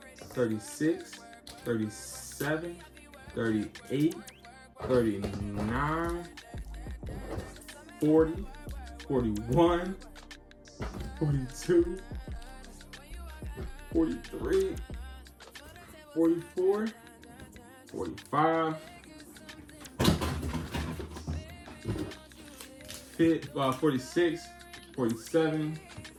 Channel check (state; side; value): identical; both; correlation 1.00